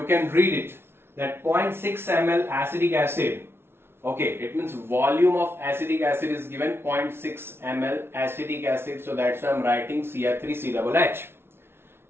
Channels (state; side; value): late; left; 0.12 ms